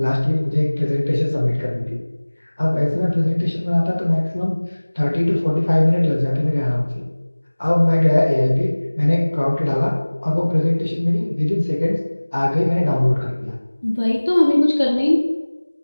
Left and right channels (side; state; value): both; inverted; correlation -1.00